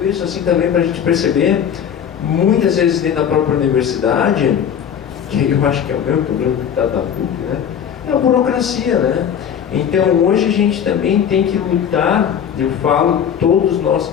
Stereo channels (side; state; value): right; quieter; 8.5 dB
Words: isso assim também para a gente perceber, muitas vezes dentro da própria universidade, que eu acho que é o mesmo problema que está da PUC, né? É a burocracia, né? Então hoje a gente também tem que lutar, eu falo, todos nós